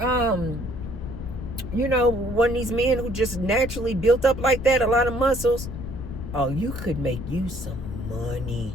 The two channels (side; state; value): left; noise; rumble, 9 dB below the sound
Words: you know, one of these men who just naturally built up like that, a lot of muscles, oh, you could make you some